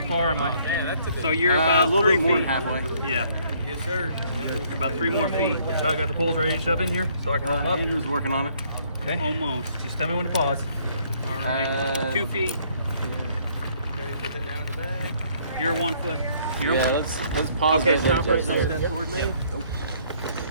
far am I? Man, that's a So you're a about little 3 bit more than feet. halfway. Yeah, Yes, sir. about 3 more feet. So I got the poles ready to shove in here, so I can roll them up. Andrew's working on it. Okay. Almost. Just tell me when to pause. All right. 2 feet. Okay, put that down to the back. You're 1 foot. You're Yeah, let's pause Okay, that stop there, right Jason. there. Step toward me.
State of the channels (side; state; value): both; inverted; correlation -0.64